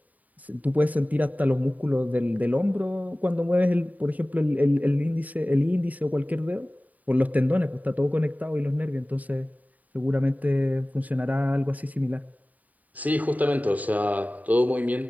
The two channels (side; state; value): left; late; 0.075 ms